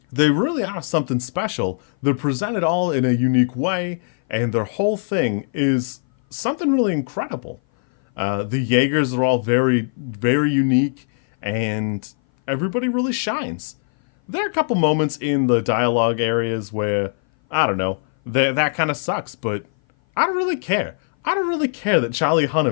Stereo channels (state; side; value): silent; right; 58 dB below the other